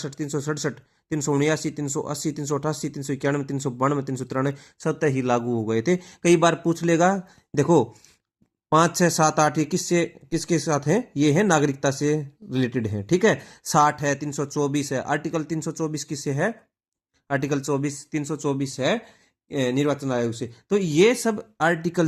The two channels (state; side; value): identical; both; correlation 1.00